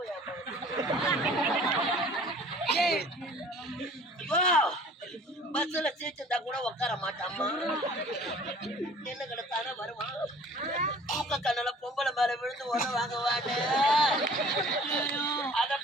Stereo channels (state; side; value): normal; both; correlation 0.49